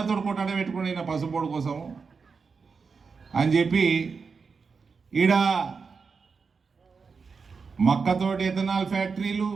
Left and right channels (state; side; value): quieter; left; 5.1 dB